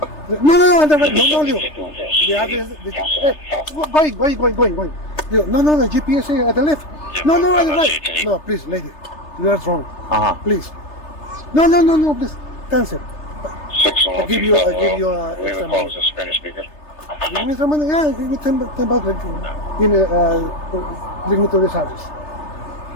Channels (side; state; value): right; late; 3.3 ms